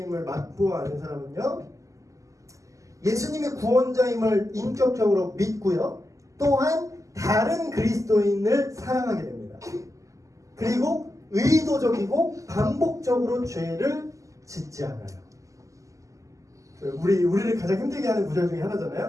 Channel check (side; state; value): left; late; 0.16 ms